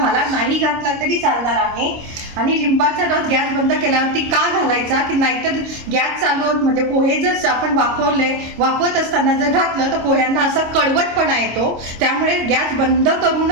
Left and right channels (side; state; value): left; late; 26 ms